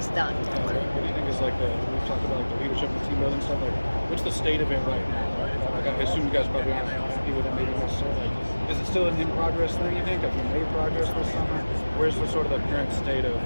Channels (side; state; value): both; inverted; correlation -1.00